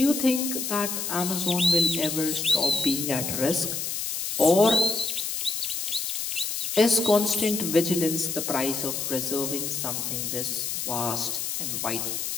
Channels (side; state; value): left; noise; hiss, 3 dB below the sound